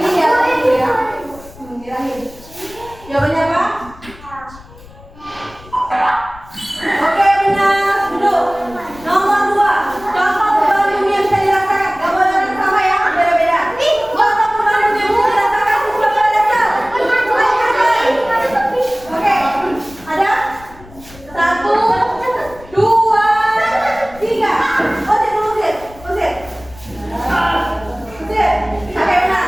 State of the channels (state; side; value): noise; left; rumble, 21 dB below the sound